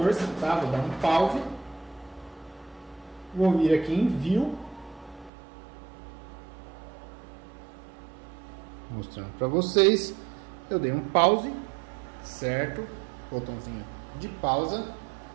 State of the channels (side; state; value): left; drops out; at 5.3 s